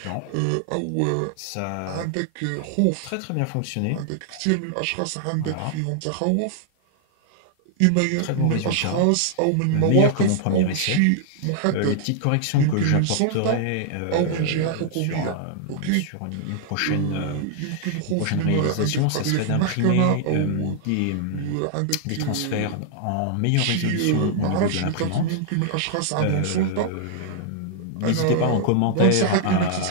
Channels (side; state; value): both; different; correlation -0.01